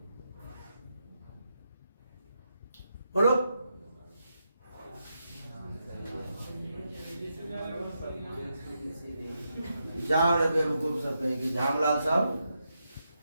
बोलो। जाओ रे बेवकूफ सब कहेंगे, झामलाल सब।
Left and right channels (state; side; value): inverted; both; correlation -0.84